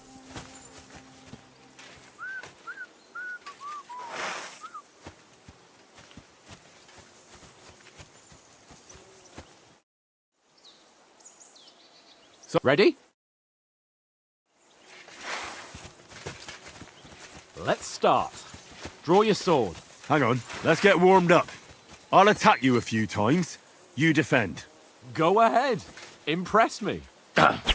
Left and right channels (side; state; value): both; identical; correlation 1.00